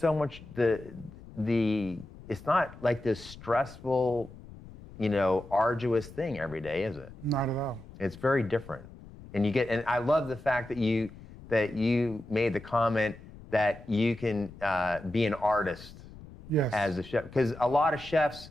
much it's not like this stressful, arduous thing every day, is it? Not at all. It's very different. And I love the fact that you made the comment that you can be an artist as a chef, because a lot of chefs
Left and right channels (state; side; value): noise; left; rumble, 18 dB below the sound